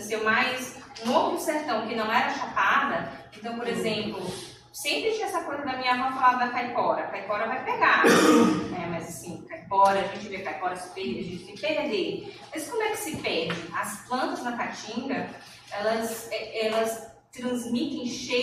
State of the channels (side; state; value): both; identical; correlation 1.00